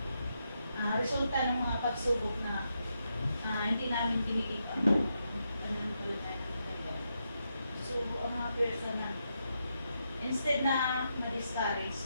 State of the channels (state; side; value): inverted; both; correlation -0.83